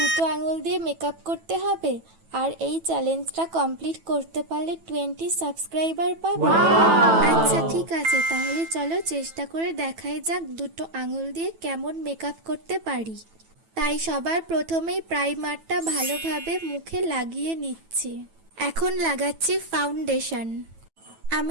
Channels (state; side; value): late; left; 9.1 ms